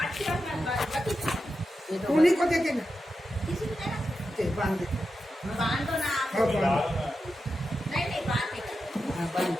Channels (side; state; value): both; normal; correlation 0.89